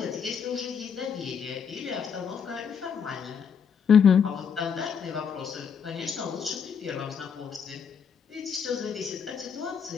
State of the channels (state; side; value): quieter; right; 6.9 dB